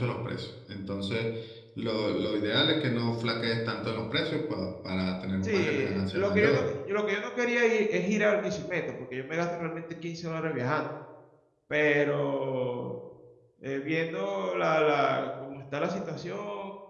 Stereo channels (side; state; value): both; identical; correlation 1.00